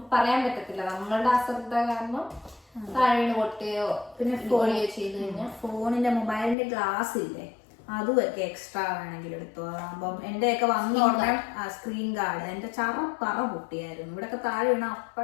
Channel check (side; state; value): right; drops out; at 6.6 s